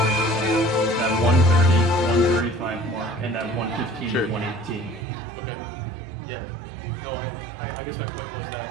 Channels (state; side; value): drops out; left; at 5.1 s